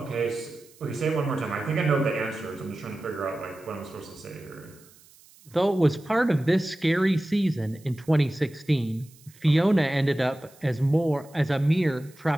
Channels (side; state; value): right; noise; hiss, 26 dB below the sound